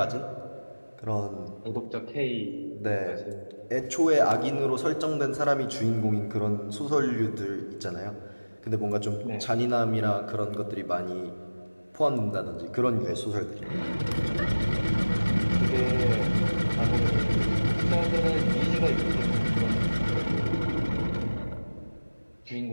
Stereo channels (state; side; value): inverted; both; correlation -1.00